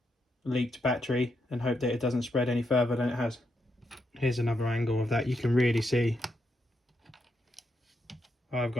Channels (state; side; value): normal; both; correlation 0.82